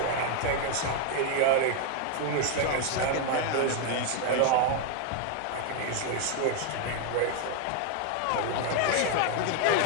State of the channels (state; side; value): different; both; correlation 0.01